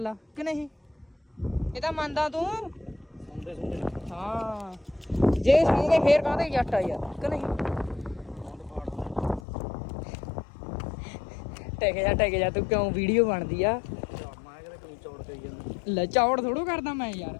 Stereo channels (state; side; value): drops out; right; at 9.4 s